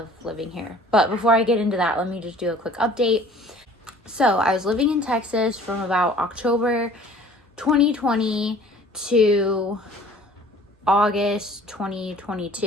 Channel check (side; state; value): both; normal; correlation 0.50